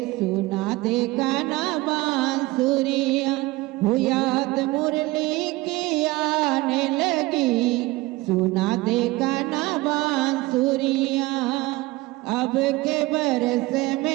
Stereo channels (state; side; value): quieter; left; 20.6 dB